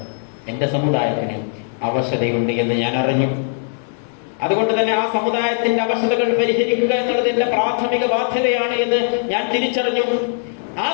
എന്റെ സമുദായത്തിന് അവശതയുണ്ട് എന്ന് ഞാൻ അറിഞ്ഞു. അതുകൊണ്ട് തന്നെ ആ സമുദായത്തിന്റെ അവശതകൾ പരിഹരിക്കുക എന്നുള്ളത് എന്റെ പ്രാഥമിക ബാധ്യതയാണ് എന്ന് ഞാൻ തിരിച്ചറിഞ്ഞു. ആ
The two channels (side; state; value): right; silent; digital silence